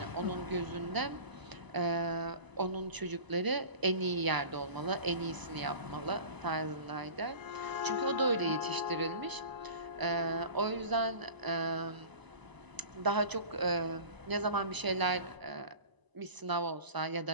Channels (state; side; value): late; left; 1.0 ms